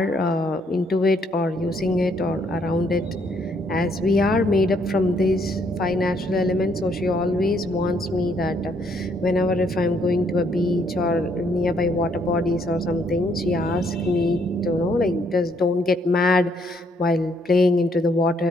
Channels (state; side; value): normal; both; correlation 0.70